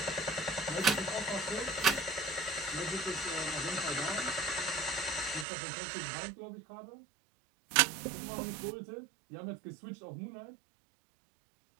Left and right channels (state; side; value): drops out; left; at 5.5 s